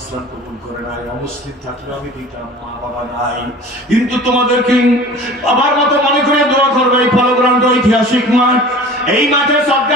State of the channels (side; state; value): both; normal; correlation 0.42